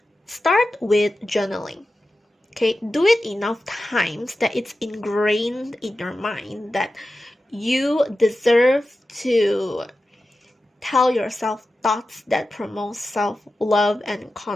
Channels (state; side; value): normal; both; correlation 0.93